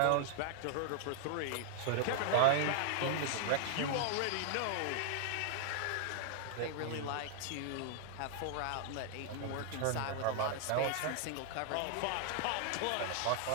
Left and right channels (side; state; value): both; different; correlation 0.00